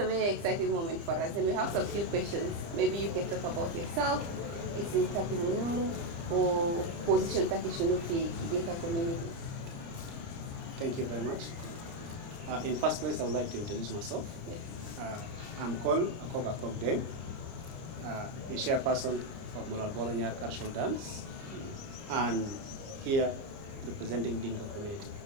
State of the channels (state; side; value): late; left; 30 ms